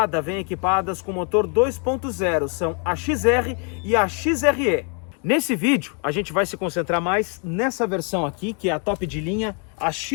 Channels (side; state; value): right; quieter; 38.9 dB